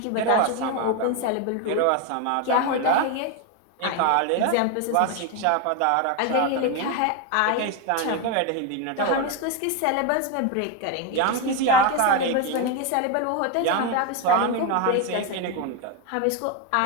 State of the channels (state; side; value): different; both; correlation 0.02